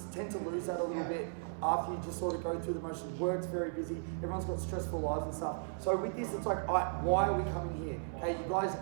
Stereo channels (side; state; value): left; silent; 54 dB below the other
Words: tend to lose that a little bit after you just sort of go through the motions. Work's very busy. Everyone's got stressful lives and stuff. So with this, it's like, why are we coming here? Okay, you guys